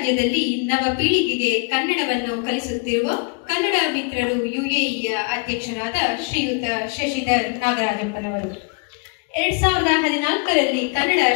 ನವ ಪೀಳಿಗೆಗೆ ಕನ್ನಡವನ್ನು ಕಲಿಸುತ್ತಿರುವ ಕನ್ನಡ ಮಿತ್ರರು ಯುಎಇಯ ಅಧ್ಯಕ್ಷರಾದ ಶ್ರೀಯುತ ಶಶಿಧರ್ ನಾಗರಾಜಪ್ಪನವರು 2014ರಲ್ಲಿ ಕನ್ನಡ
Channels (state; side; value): quieter; right; 34.1 dB